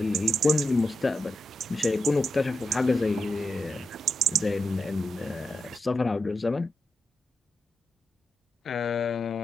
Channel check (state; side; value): normal; both; correlation 0.86